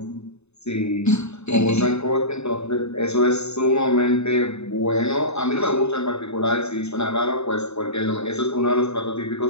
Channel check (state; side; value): late; right; 0.80 ms